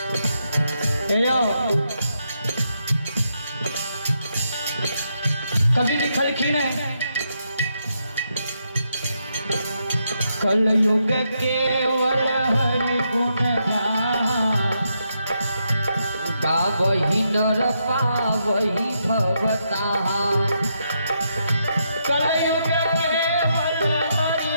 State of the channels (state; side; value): inverted; both; correlation -0.80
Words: कभी लिखलखिन है कलयुग केवल हरि गुण गावही नर पावही भवता। कलयुग केवल हरि